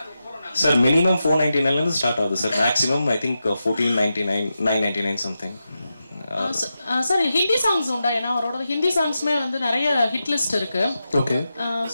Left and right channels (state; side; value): inverted; both; correlation -0.90